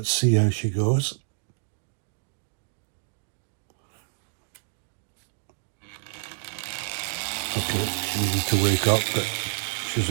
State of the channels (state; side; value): silent; left; digital silence